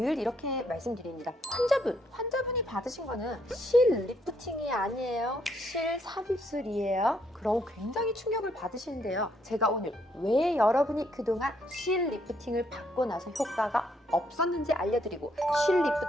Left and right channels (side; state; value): both; normal; correlation 0.72